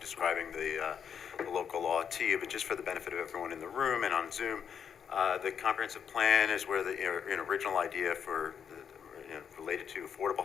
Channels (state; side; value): quieter; right; 7.6 dB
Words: describing the local law to you, but just for the benefit of everyone in the room and on Zoom, the comprehensive plan is where the original idea for related to affordable